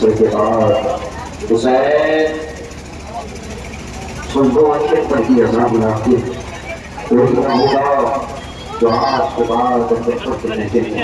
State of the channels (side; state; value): both; identical; correlation 1.00